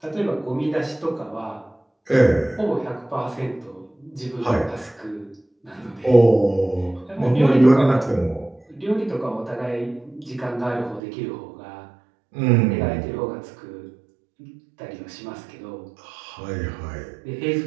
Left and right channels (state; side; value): drops out; left; at 11.0 s